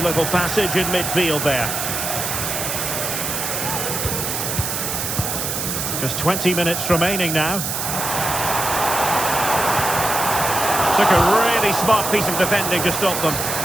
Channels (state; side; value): noise; right; hiss, 2 dB below the sound